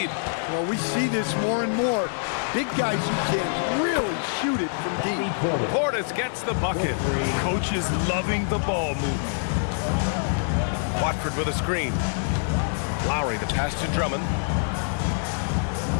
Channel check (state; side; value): silent; right; digital silence